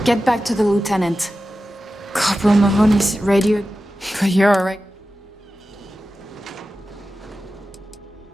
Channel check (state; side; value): normal; both; correlation 0.94